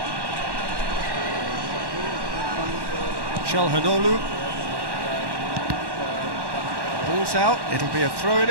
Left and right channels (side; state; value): left; late; 1.1 ms